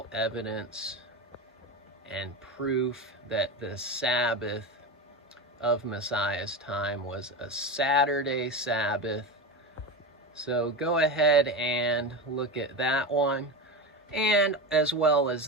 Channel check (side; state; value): both; normal; correlation 0.22